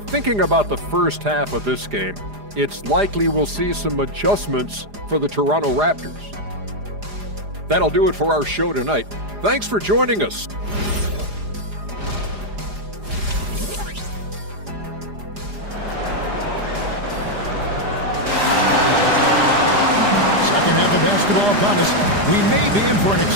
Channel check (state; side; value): late; left; 4.9 ms